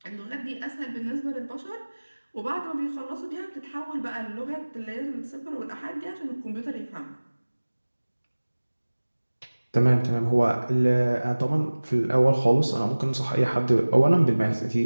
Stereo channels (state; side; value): inverted; both; correlation -1.00